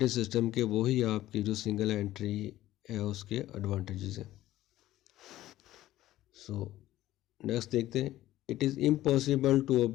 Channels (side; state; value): right; quieter; 14.8 dB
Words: सिस्टम के, वही आपकी जो सिंगल एंट्री है उसके एडवांटेजेस हैं। सो नेक्स्ट देखते हैं। It is impossible to